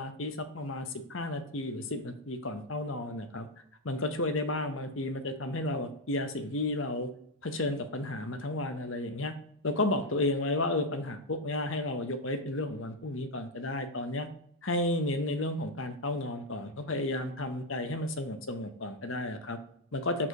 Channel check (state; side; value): normal; both; correlation 0.04